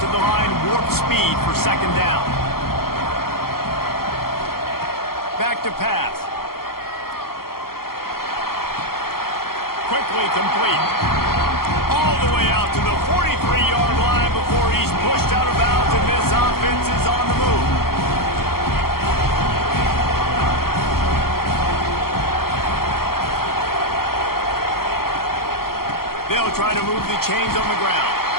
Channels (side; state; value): right; late; 0.93 ms